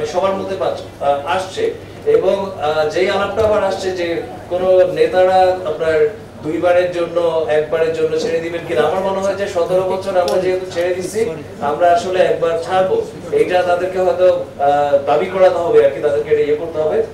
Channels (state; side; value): identical; both; correlation 1.00